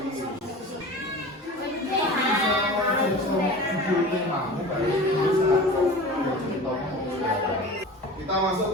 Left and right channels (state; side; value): normal; both; correlation 0.36